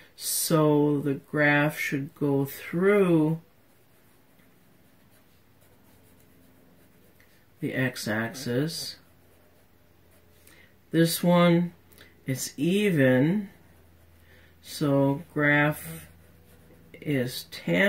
so the graph should go through the x-axis. This one, it's even, so graph is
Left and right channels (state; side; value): identical; both; correlation 1.00